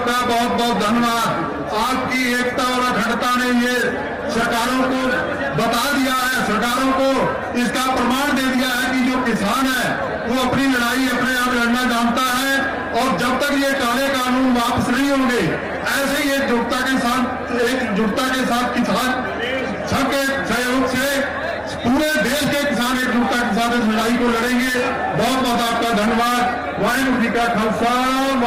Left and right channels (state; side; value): identical; both; correlation 1.00